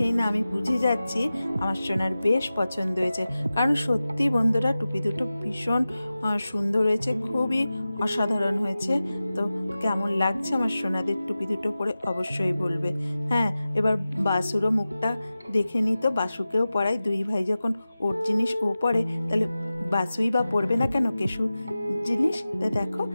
না আমি বুঝে যাচ্ছি আমার সোনার বেশ পছন্দ হয়েছে। কারণ সত্যি বন্ধুরা টুপি দুটো ভীষণ সুন্দর হয়েছে, খুবই অসাধারণ হয়েছে। তো কেমন লাগছে আমার সোনাদের টুপি দুটো পরে অবশ্যই বলবে। হ্যাঁ, এবার বাসুরও মুখটা দেখে নিই, তো বাসুকেও পরাই। 2 ভাই যখন ওর জিনিস ও পরে, তাহলে বাসুই বা পরবে না কেন কেশু জিনিস। তা দেখো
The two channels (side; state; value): both; inverted; correlation -0.95